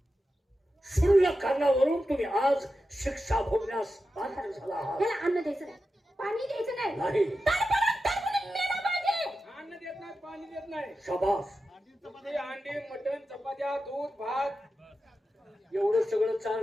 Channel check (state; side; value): normal; both; correlation 0.91